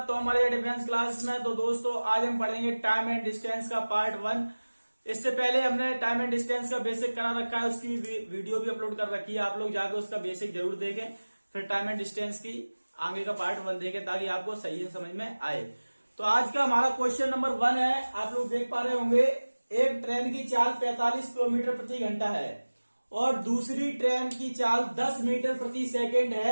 तो हमारे डिफेंस क्लास में तो दोस्तों आज हम पढ़ेंगे टाइम एंड डिस्टेंस का पार्ट 1। इससे पहले हमने टाइम एंड डिस्टेंस का बेसिक करा रखा है, उसकी वीडियो भी अपलोड कर रखी है। आप लोग जाकर उसका बेसिक जरूर देखें, फिर टाइम एंड डिस्टेंस की आगे का पार्ट 1 देखें ताकि आपको सही से समझ में आए। तो आज का हमारा क्वेश्चन नंबर 1 है। आप लोग देख पा रहे होंगे, एक ट्रेन की चाल 45 किलोमीटर प्रति घंटा है और दूसरी ट्रेन की चाल 10 मीटर प्रति सेकेंड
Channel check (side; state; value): both; inverted; correlation -1.00